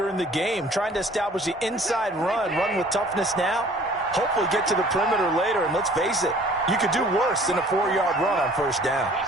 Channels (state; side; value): normal; both; correlation 0.52